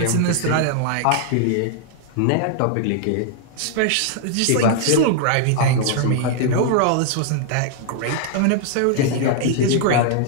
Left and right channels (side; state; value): both; different; correlation 0.00